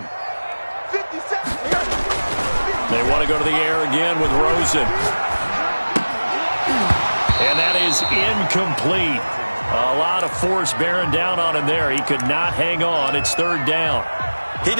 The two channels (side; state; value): both; inverted; correlation -1.00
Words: They want to go to the air again with Rosen. And that is incomplete. A lot of force bearing down on him there. He could not hang on. It's third down. He